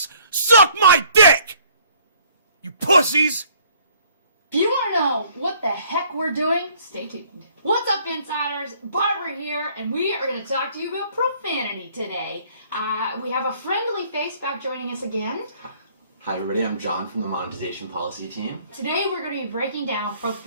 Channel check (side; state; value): both; inverted; correlation -0.59